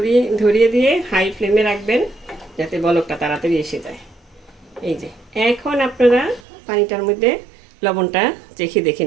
ধরিয়ে দিয়ে হাই ফ্লেমে রাখবেন, যাতে বলকটা তাড়াতাড়ি এসে যায়। এই যে এখন আপনারা পানিটার মধ্যে লবণটা চেখে দেখে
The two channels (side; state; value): left; drops out; at 6.4 s